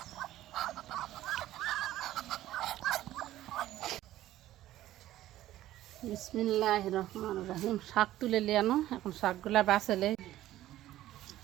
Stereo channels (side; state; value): left; quieter; 14.2 dB